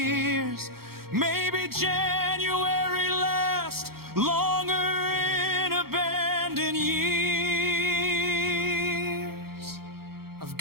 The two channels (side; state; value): left; late; 0.94 ms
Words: Maybe January lasts longer in abandoned years. I've